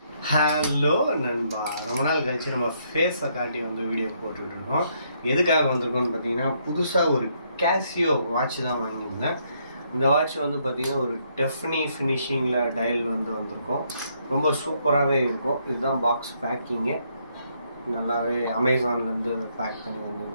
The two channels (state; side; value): inverted; both; correlation -0.73